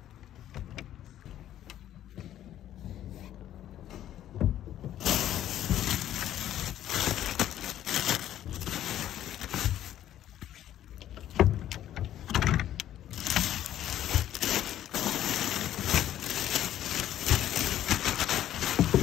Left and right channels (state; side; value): quieter; right; 11.9 dB